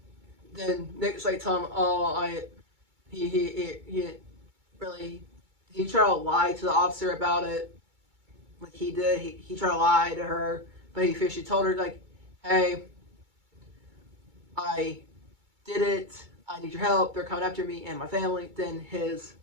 Then Nick's like telling him, "Oh, he really he tried to lie to the officer about it, like he did. He tried to lie to her, but she told her like, hey, I did it. I need your help. They're coming after me and my family." Then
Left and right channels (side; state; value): left; late; 2.2 ms